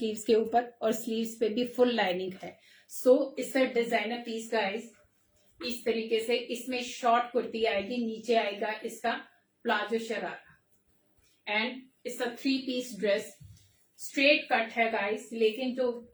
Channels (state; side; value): identical; both; correlation 1.00